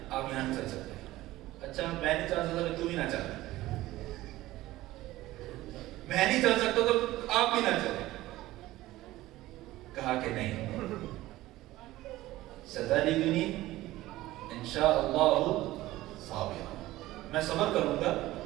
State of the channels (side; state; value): left; quieter; 16.8 dB